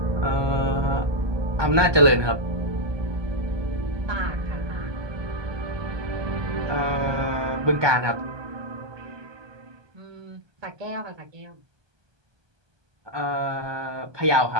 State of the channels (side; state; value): left; late; 1.2 ms